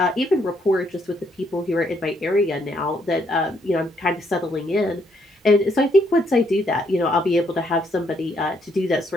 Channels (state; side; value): normal; both; correlation 0.72